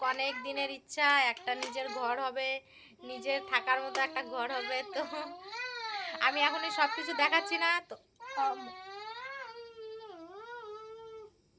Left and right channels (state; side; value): identical; both; correlation 1.00